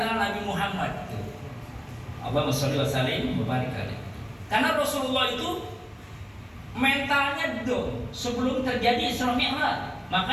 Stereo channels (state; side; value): identical; both; correlation 1.00